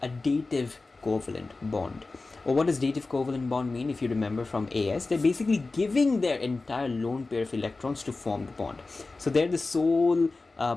a dative covalent bond. Or what does dative covalent bond mean? If you remember from AS, they're basically giving their entire lone pair of electrons to form the bond. So they're the sole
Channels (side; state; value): right; quieter; 3.6 dB